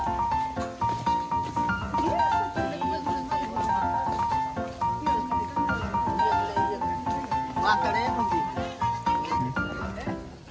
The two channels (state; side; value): identical; both; correlation 1.00